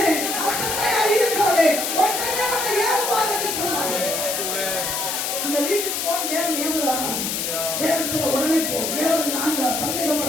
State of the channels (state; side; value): noise; left; hiss, 1 dB below the sound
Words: அசட்டையா இருக்காதே, உடனே வந்து ஏவுவார் என்று சொன்னார். அந்த வீட்டுக்கு போன் தேவன் ஏவுறாங்க. தேவன் சொல்ல உடனே போ, ஏவது நான் தான்,